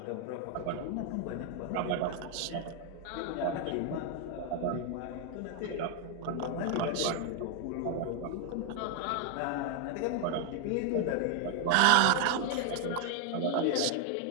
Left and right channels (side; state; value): both; different; correlation 0.00